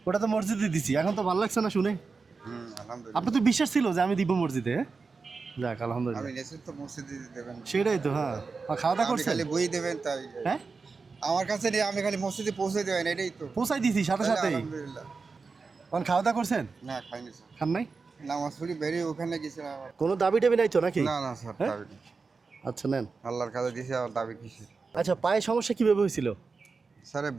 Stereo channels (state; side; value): quieter; left; 4.5 dB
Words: ওটা তো মসজিদে দিছি, এখন তো ভালো লাগছে না শুনে। আলহামদুলিল্লাহ। আপনার তো বিশ্বাস ছিল যে আমি দিব মসজিদে, হ্যাঁ? যাক আমি আলহামদুলিল্লাহ। নেছেন তো মসজিদে দেবেন, সেটাই তো, হ্যাঁ। আর খাওয়া দাওয়া আপনি করছেন? খালি বই দেবেন তাই। হ্যাঁ, আমার কাছে নিয়ে আমি খালি মসজিদে পৌঁছে দেবেন, এটাই তো। পৌঁছাই দিছি সাথে তাহলে সাথেই। আলহামদুলিল্লাহ। এখন খাওয়া দাওয়া করছেন? না খাইনি স্যার, খান নাই? নামাজ পড়ি বেরিয়ে ওখানে গেছিলাম আবার। কোনো দাবি টাবি নাই তো নাকি? না না স্যার, হ্যাঁ? দাবি নেই। আচ্ছা নেন। আল্লাহর কাছে দিয়েছি, আর দাবি কিসের? আচ্ছা, পায়ে সমস্যা কিভাবে হয়েছিল? স্যার